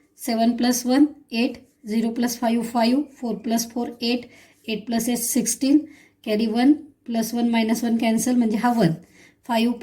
7 + 1 8, 0 + 5 5, 4 + 4 8, 8 + 8 16, कॅरी 1 + 1 - 1 कॅन्सल म्हणजे हा 1. 5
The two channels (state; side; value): identical; both; correlation 1.00